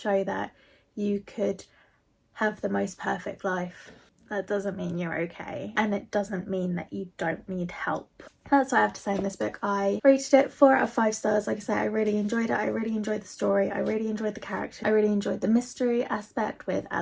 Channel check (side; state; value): both; identical; correlation 1.00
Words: that you could have the most perfect life. That doesn't mean you're okay, and it doesn't mean that you don't need help. That's what I have to say on this book. I rated it 4 out of 5 stars. Like I said, I really enjoyed it. I really enjoyed the story. I really enjoyed the character. I really enjoyed the mystery aspect with